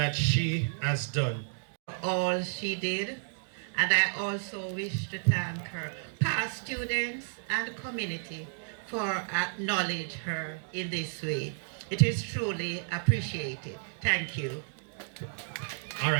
she has done. All she did, and I also wish to thank her past students and community for acknowledge her in this way. It is truly appreciated. Thank you. All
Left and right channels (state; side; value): silent; left; digital silence